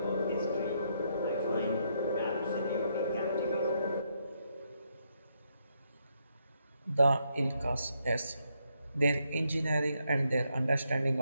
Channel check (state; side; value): inverted; both; correlation -0.77